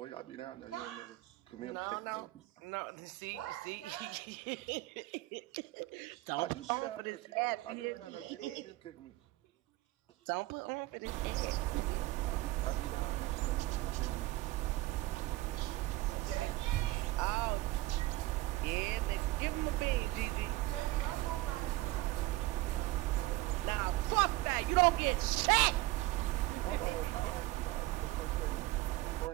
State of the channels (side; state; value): left; quieter; 18.8 dB